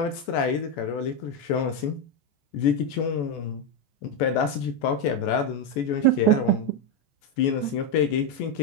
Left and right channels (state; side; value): late; right; 14 ms